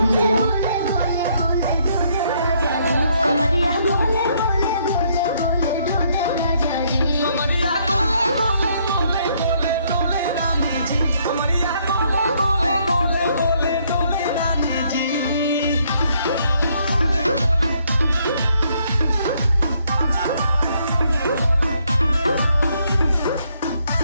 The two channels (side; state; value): both; inverted; correlation -0.70